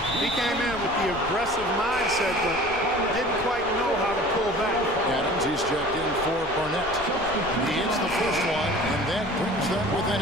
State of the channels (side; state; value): left; noise; rumble, 14 dB below the sound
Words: He came in with the aggressive mindset, but didn't quite know how to pull back. Adams, he's checked in for Barnett. He hits the first one, and that brings them within